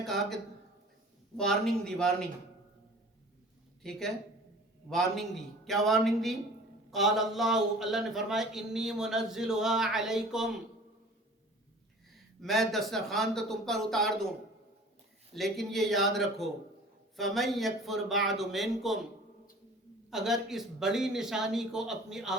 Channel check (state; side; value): normal; both; correlation 0.45